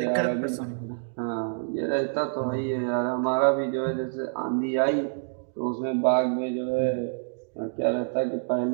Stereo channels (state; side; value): silent; left; digital silence